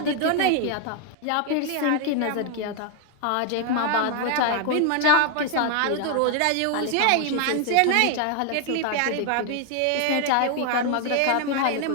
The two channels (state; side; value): different; both; correlation 0.01